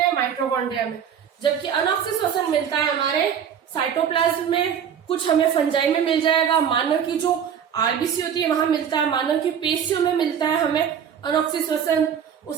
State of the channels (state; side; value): quieter; left; 8.2 dB